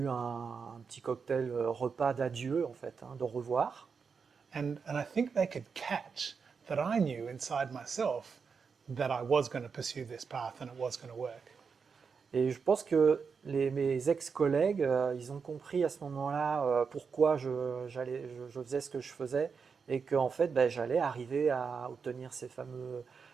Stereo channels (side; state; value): left; quieter; 5.7 dB